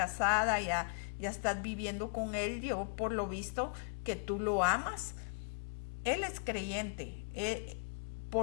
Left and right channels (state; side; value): silent; right; 53 dB below the other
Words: ya estás viviendo con él, yo por lo visto que tú lo amas. Él es creyente.